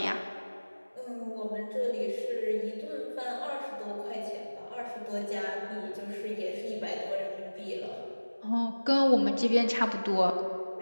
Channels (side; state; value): both; inverted; correlation -1.00